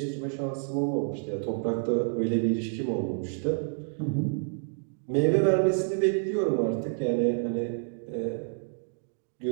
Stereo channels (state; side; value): silent; left; digital silence